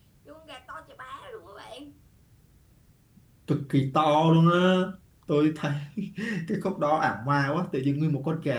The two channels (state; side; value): identical; both; correlation 1.00